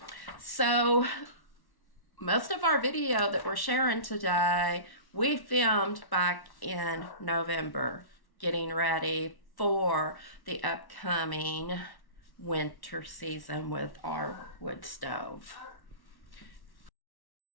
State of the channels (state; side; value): late; right; 1.1 ms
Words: So most of our video that we're sharing today, we filmed back in November, getting ready for the upcoming winter season with our wood stove.